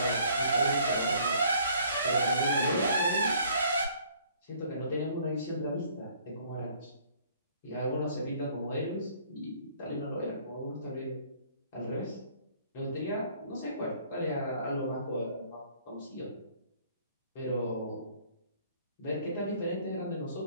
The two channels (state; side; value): inverted; both; correlation -0.59